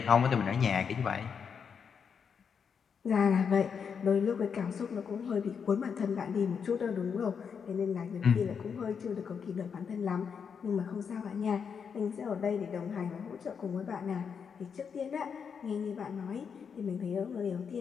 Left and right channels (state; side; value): quieter; right; 6.6 dB